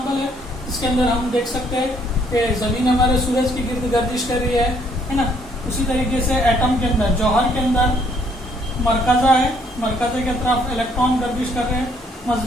ہے. اس کے اندر ہم دیکھ سکتے ہیں کہ زمین ہمارے سورج کی گرد گردش کر رہی ہے نا. اسی طریقے سے ایٹم کے اندر، جوہر کے اندر مرکزہ ہے، مرکزے کے طرف الیکٹران گردش کر رہے ہیں.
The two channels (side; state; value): both; normal; correlation 0.66